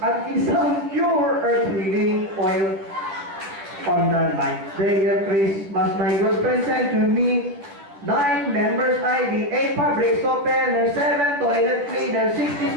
at isang pure earth healing oil. On the 9th day of Christmas, my good friend sent to me 9 members ID, 8 fabric softeners, 7 toilet cleaners, 6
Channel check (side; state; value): left; late; 11 ms